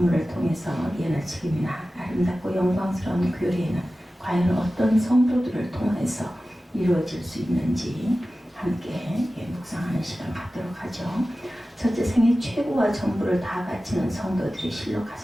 통해서 예나 책임이나 아름답고 영광스러운 교회는 과연 어떤 성도들을 통해서 이루어질 수 있는지 함께 묵상하는 시간 갖도록 하죠. 첫째, 생애 최고와 전부를 다 바치는 성도들이 실로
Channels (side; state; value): both; normal; correlation 0.95